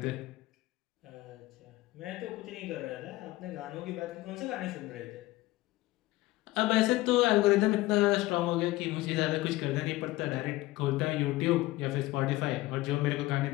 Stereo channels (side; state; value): right; quieter; 18.4 dB